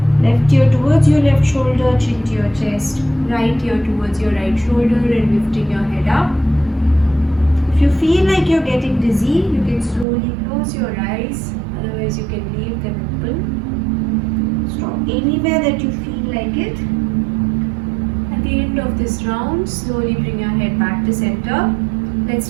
Left ear towards your left shoulder, chin to your chest. Right ear towards your right shoulder and lifting your head up. If you feel like you're getting dizzy, you can slowly close your eyes. Otherwise, you can leave them open. Stop anywhere that you feel like it. At the end of this round, slowly bring your head back to center. Let's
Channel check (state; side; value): drops out; left; at 10.1 s